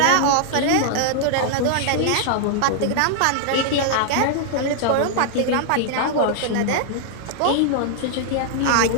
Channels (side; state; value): both; different; correlation -0.01